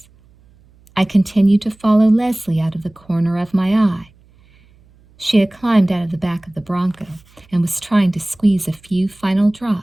I continued to follow Leslie out of the corner of my eye. She had climbed out of the back of the Bronco and was trying to squeeze a few final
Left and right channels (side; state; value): right; noise; hum, 30 dB below the sound